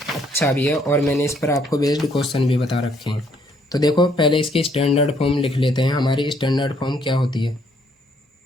भी है, और मैंने इस पर आपको बेस्ड क्वेश्चन भी बता रखे हैं। तो देखो पहले इसकी स्टैंडर्ड फॉर्म लिख लेते हैं। हमारी स्टैंडर्ड फॉर्म क्या होती है,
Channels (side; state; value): both; normal; correlation 0.68